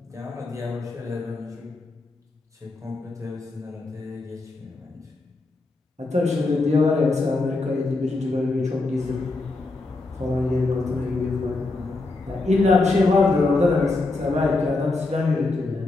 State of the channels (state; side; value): quieter; right; 3.3 dB